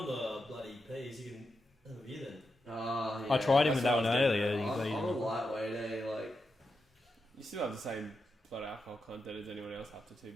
on the bloody P's, you can have a beer then. Oh, yeah. I tried him That's with that what one I was earlier. thinking. You I'm got a him. lightweight, eh? Like, You still have the same blood alcohol content as anyone else after 2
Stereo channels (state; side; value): normal; both; correlation 0.87